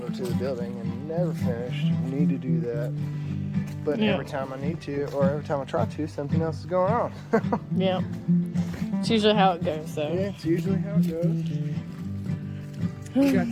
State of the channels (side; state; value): both; identical; correlation 1.00